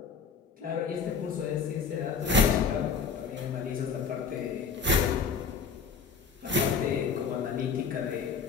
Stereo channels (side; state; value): right; quieter; 5.6 dB